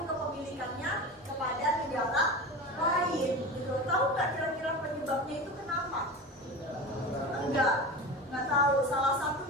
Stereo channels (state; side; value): normal; both; correlation 0.28